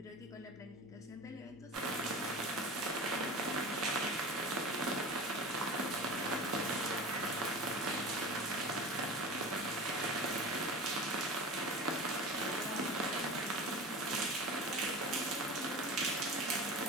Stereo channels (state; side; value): normal; both; correlation 0.33